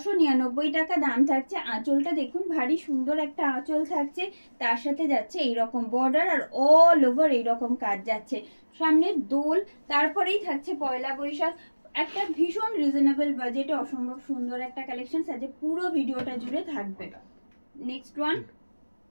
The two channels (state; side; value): inverted; both; correlation -1.00